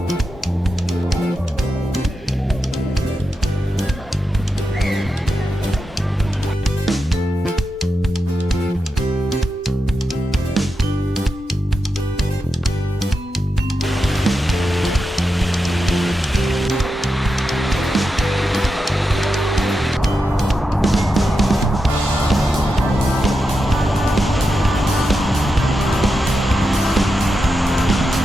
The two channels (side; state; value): both; normal; correlation 0.88